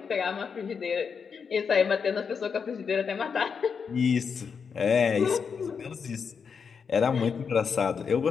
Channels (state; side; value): quieter; right; 6.1 dB